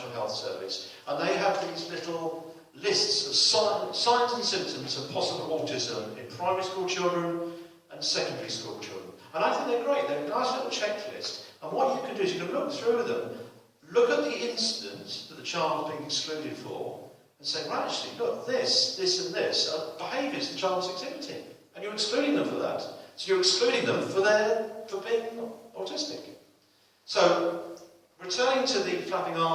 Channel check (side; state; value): both; identical; correlation 1.00